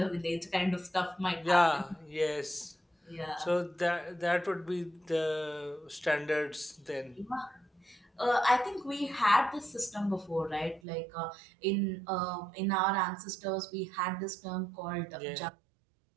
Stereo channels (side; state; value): left; drops out; at 10.8 s